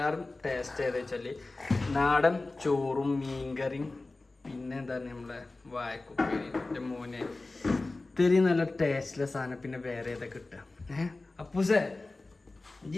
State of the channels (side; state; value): right; quieter; 3.2 dB